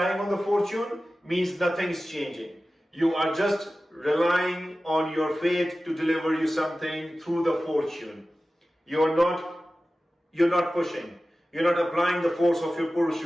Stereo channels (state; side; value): normal; both; correlation 0.95